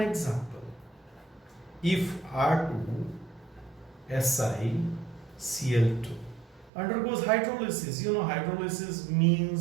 example. If R2SiCl2 undergoes hydrolysis, hydrolysis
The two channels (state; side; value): drops out; left; at 6.7 s